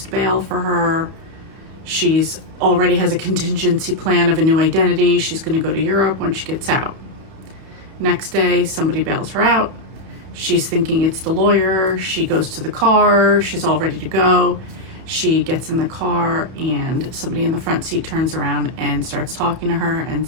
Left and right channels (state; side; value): late; left; 31 ms